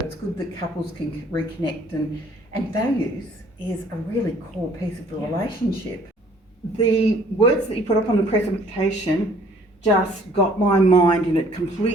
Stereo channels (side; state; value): both; normal; correlation 0.58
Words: good that couples can reconnect, and values is a really core piece of the relationship. The words that you put up on the presentation just got my mind in a